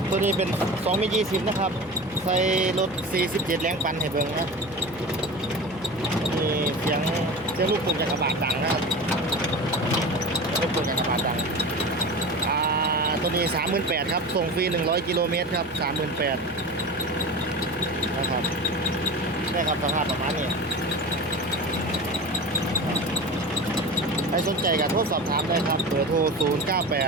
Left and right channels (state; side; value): noise; left; hum, 20 dB below the sound